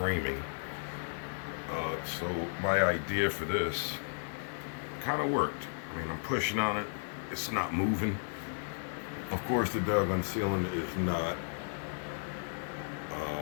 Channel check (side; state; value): right; silent; digital silence